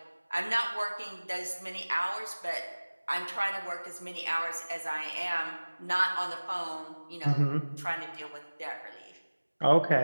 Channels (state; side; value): inverted; both; correlation -1.00